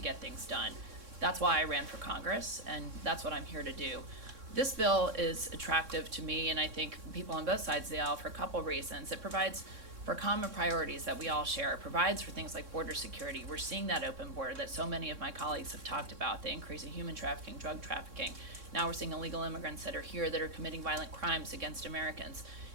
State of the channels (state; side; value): late; left; 3.6 ms